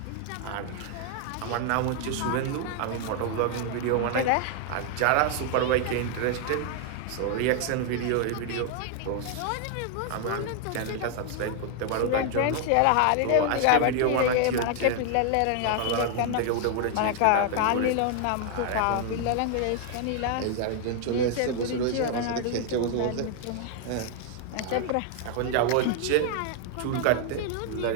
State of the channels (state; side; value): different; both; correlation 0.00